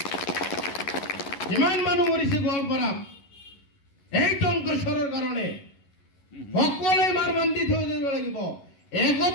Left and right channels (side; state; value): right; late; 11 ms